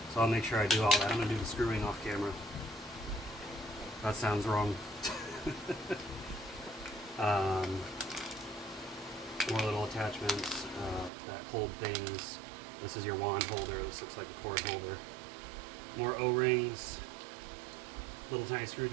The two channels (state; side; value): drops out; left; at 11.1 s